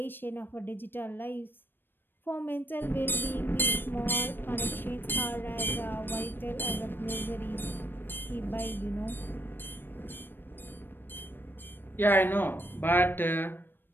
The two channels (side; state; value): right; late; 0.096 ms